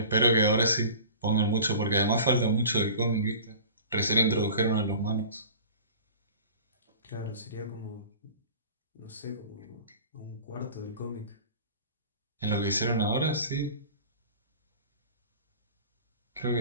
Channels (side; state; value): both; inverted; correlation -0.41